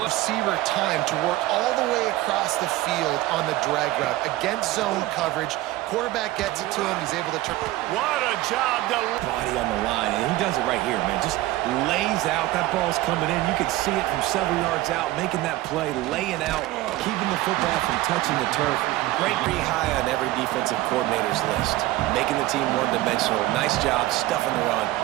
Receiver time to work all the way across the field on the drag route. Against zone coverage. Quarterback gets it to him. He's able to turn. What a job to... Body on the line, and he does it right here, man. Just lays out. That ball's coming in. You can see it from several yards out, making that play, laying out, keeping the football from touching the turf. Great, pretty high on every defensive coordinator's list. Making the team one-dimensional. Nice job stuffing the run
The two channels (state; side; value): quieter; left; 17.0 dB